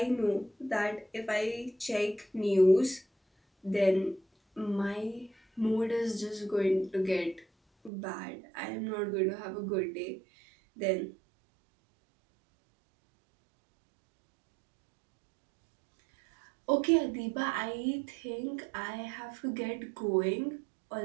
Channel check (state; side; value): drops out; left; at 7.9 s